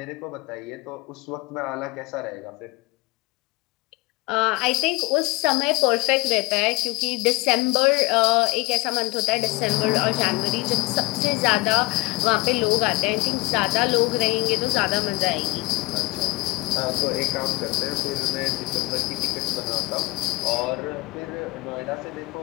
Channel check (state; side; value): quieter; right; 23.7 dB